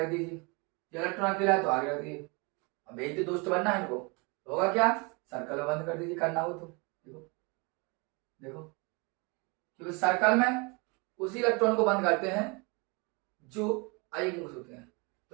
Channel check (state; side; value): quieter; left; 30.1 dB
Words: दीजिए, ये इलेक्ट्रॉन अकेला है तो आगे रख दीजिए। अब एक तो दोस्त बनना है इनको, होगा क्या, सर्कल बंद कर दीजिए करना हो तो। देखो देखो, क्योंकि सर्कल में उसी इलेक्ट्रॉन को बंद करते हैं जो अयुग्मित होते हैं।